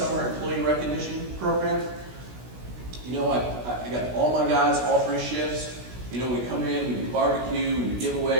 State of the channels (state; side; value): late; left; 16 ms